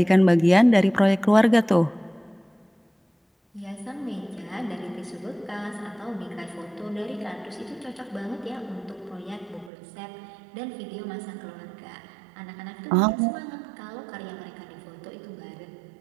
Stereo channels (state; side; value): drops out; left; at 9.7 s